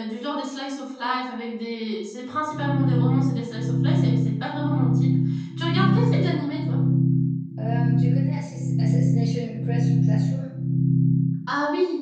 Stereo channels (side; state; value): both; identical; correlation 1.00